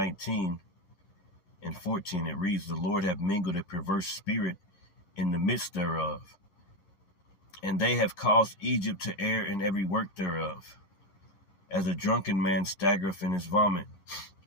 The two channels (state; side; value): late; right; 10 ms